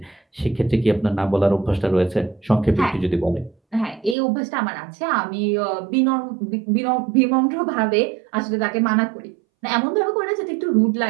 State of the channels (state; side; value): drops out; left; at 4.2 s